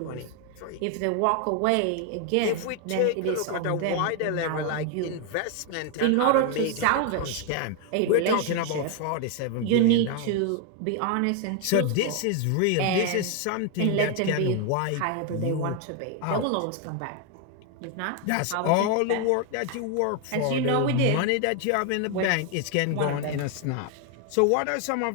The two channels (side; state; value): both; different; correlation 0.00